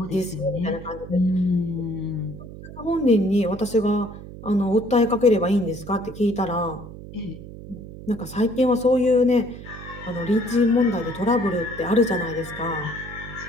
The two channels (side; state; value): right; noise; hum, 14 dB below the sound